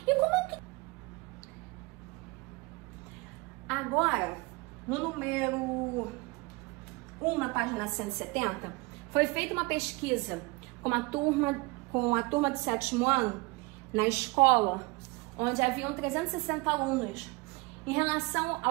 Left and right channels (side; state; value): left; quieter; 25.1 dB